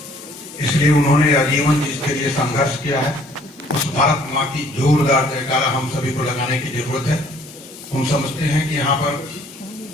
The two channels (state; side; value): normal; both; correlation 0.59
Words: इसलिए उन्होंने आजीवन जिसके लिए संघर्ष किया है उस भारत माँ की जोरदार जयकारा हम सभी को लगाने की जरूरत है। हम समझते हैं कि यहाँ पर